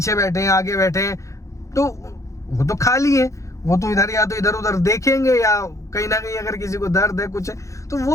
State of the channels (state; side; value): late; right; 0.15 ms